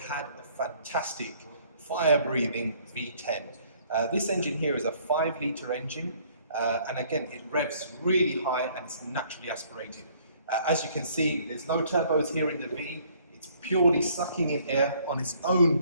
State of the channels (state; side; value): inverted; both; correlation -0.61